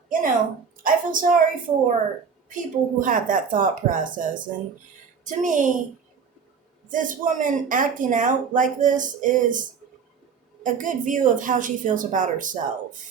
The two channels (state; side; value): quieter; left; 6.1 dB